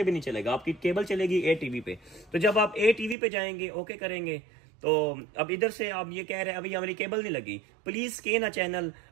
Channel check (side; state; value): left; drops out; at 3.2 s